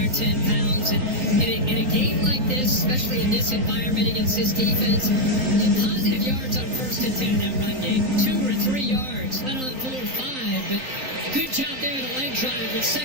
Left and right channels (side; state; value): left; late; 3.9 ms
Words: pounds. And in a game like this, especially in this environment against this defense, positive yards on 1st and 10 in that run game. 2 or 3 yards, let on 4 or 5, but good job there in the leg drive with